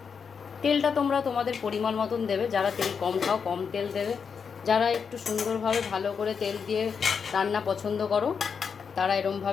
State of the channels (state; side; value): quieter; right; 6.2 dB